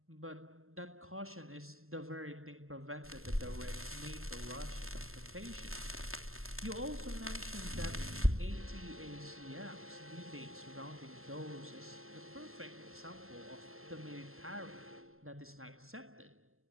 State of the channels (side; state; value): left; late; 0.62 ms